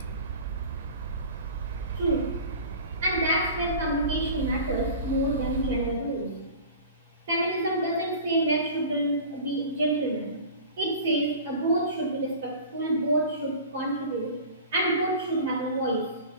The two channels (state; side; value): inverted; both; correlation -0.38